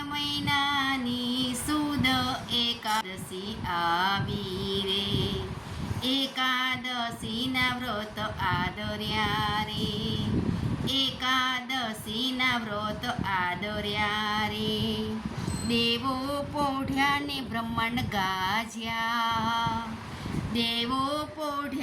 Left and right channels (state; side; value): identical; both; correlation 1.00